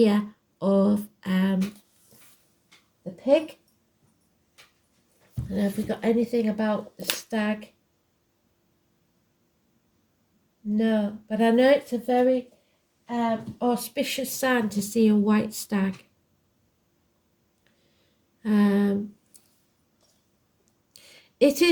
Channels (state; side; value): identical; both; correlation 1.00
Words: of the pig. And have we got anything about the stag? No, but I know it's a very auspicious sign to see a white stag. It